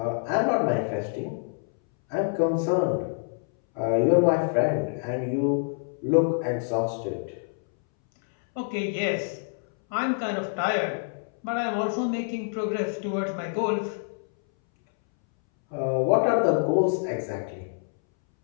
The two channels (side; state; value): right; silent; 61 dB below the other